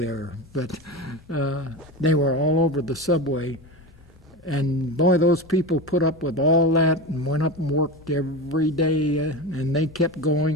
there. But they were all over the subway. And boy, those people put up with all that and went up and worked every day, and they kept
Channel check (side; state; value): both; normal; correlation 0.23